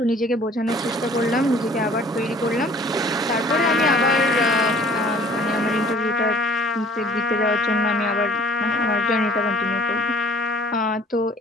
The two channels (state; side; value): normal; both; correlation 0.52